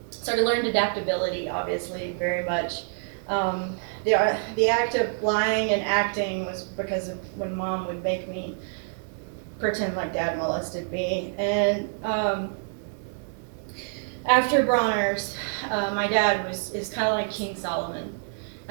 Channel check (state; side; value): silent; left; digital silence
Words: So I learned adaptability, obviously, very much. The act of lying and acting was because of when Mom would make me pretend like Dad molested me. And after Bronner's, my dad is kind of like King Solomon. I